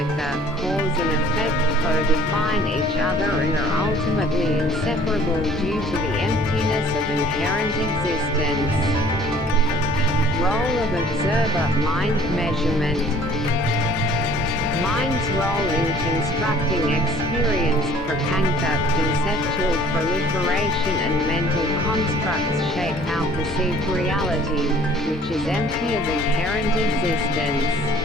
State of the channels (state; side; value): normal; both; correlation 0.53